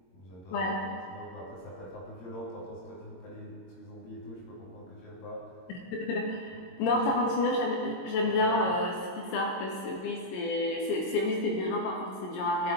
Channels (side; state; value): right; late; 22 ms